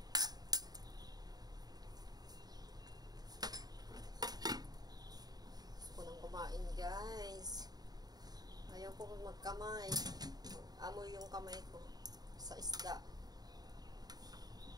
Gusto ko nang kumain guys. Ayaw ko magkamay. Amoy yung kamay ko sa isda.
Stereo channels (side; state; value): left; late; 0.19 ms